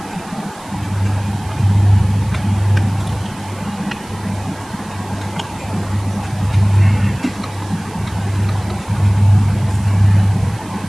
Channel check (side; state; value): right; noise; hiss, 22 dB below the sound